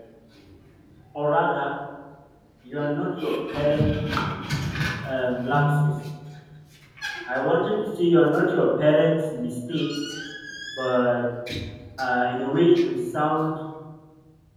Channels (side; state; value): both; identical; correlation 1.00